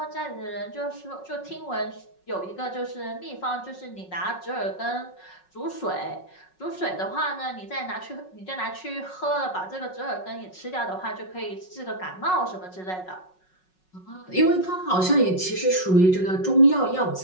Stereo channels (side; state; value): right; late; 5.4 ms